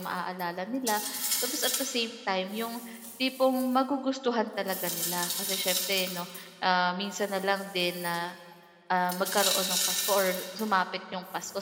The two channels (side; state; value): both; identical; correlation 1.00